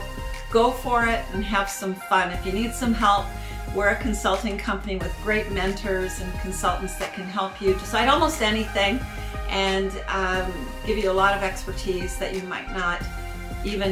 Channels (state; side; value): identical; both; correlation 1.00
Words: go for it and have some fun. If you need some help, we're a consulting company with great mentors and consultants that can help you decide almost anything and give you a lot of expertise that you might not